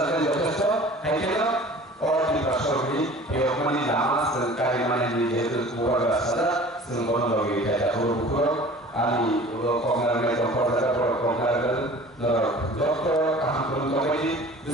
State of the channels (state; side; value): normal; both; correlation 0.44